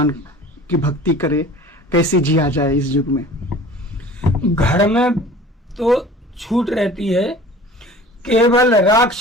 की भक्ति करे, कैसे जिया जाए इस युग में? घर में तो छूट रहती है, केवल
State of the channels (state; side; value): normal; both; correlation 0.44